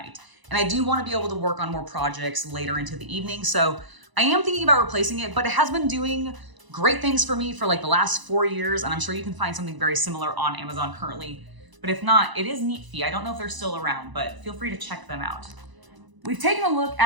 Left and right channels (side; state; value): left; late; 1.0 ms